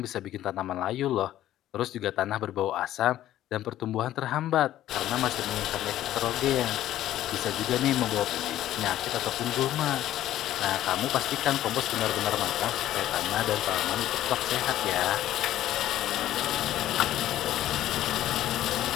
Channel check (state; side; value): quieter; right; 13.2 dB